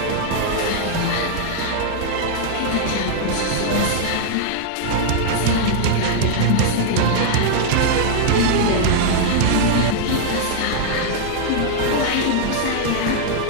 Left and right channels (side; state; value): both; different; correlation -0.01